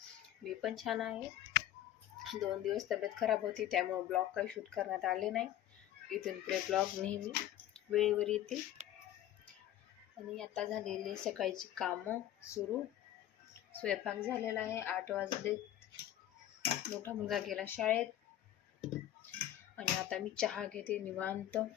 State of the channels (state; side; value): quieter; right; 12.6 dB